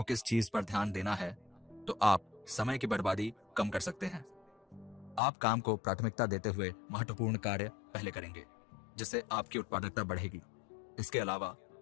किस चीज पर ध्यान देना है, तो आप समय की बर्बादी कम कर सकते हैं। आप काम को प्राथमिकता देते हुए महत्वपूर्ण कार्य पहले करेंगे, जिससे आपकी उत्पादकता बढ़ेगी। इसके अलावा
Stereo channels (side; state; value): right; drops out; at 5.2 s